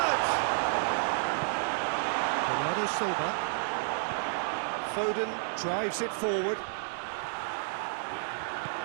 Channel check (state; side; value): silent; left; digital silence